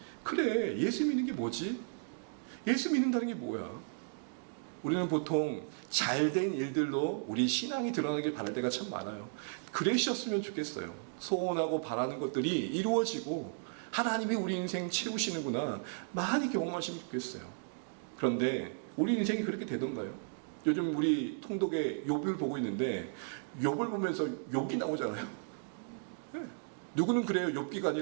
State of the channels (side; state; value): left; silent; digital silence